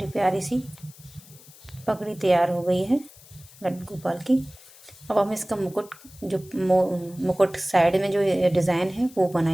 प्यारी सी पगड़ी तैयार हो गई है लड्डू गोपाल की। अब हम इसका मुकुट, जो मुकुट साइड में जो डिज़ाइन है वो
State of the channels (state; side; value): noise; left; hiss, 22 dB below the sound